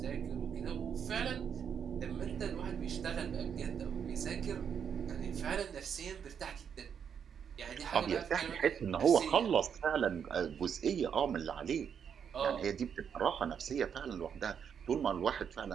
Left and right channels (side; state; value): left; quieter; 7.6 dB